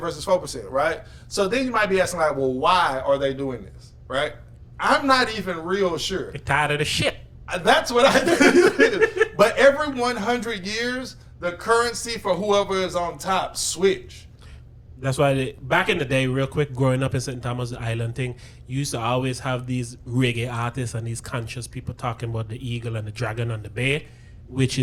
4%, right? So then you might be asking like, well, why are they doing this, right? I'm not even real sure. They're tired of the shit. That's what I think. But every 100 years, the currency for whoever is on top switch. That's why back in the day, real quick, growing up in St. Thomas Island thing, you used to always have these reggae artists and these conscious people talking about the eagle and the dragon on the bear, which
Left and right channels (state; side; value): identical; both; correlation 1.00